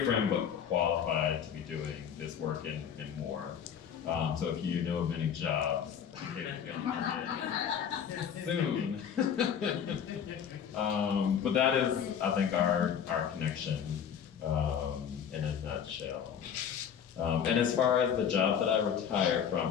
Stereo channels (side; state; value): right; quieter; 8.2 dB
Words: friend, but qualified to be doing this work and more. So if you know of any jobs, soon. But that is, I think, our connection in a nutshell. And as far as the job that I retired